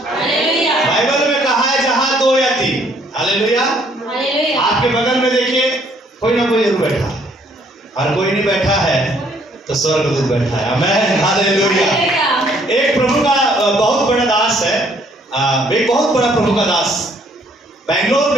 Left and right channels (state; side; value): normal; both; correlation 0.64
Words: Bible में कहा है जहां दो या तीन, हालेलुया। आपके बगल में देखिए कोई ना कोई जरूर बैठा है, और कोई नहीं बैठा है तो स्वर्गदूत बैठा है। आमीन, हालेलुया। एक प्रभु का बहुत बड़ा दास है, एक बहुत बड़ा प्रभु का दास बेंगलोर